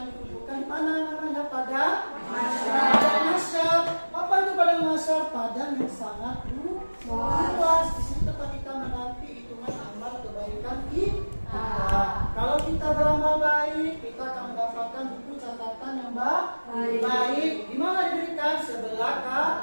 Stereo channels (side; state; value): both; inverted; correlation -1.00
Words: dikumpulkan di mana namanya? Pada mahsyar. Apa itu padang mahsyar? Padang yang sangat luas. Di situ tempat kita menanti hitungan amal kebaikan kita. Kalau kita beramal baik, kita akan mendapatkan buku catatan yang baik. Di mana diberikan? Sebelah